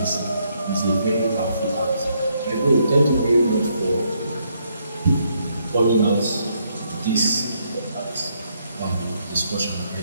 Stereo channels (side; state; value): both; inverted; correlation -0.74